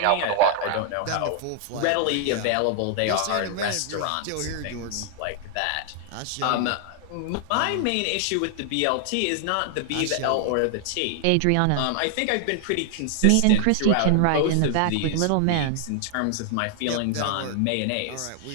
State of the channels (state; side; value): different; both; correlation 0.00